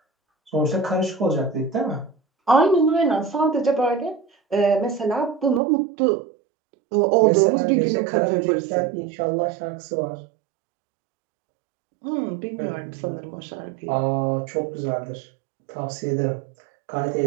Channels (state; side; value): drops out; left; at 5.6 s